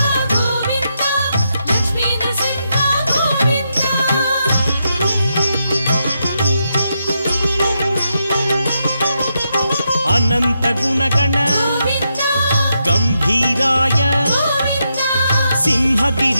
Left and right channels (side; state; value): both; inverted; correlation -0.83